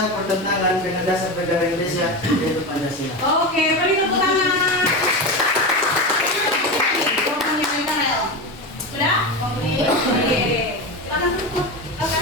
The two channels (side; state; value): both; normal; correlation 0.20